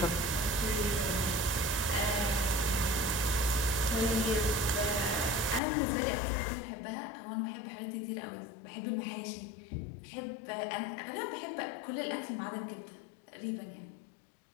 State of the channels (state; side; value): drops out; right; at 5.6 s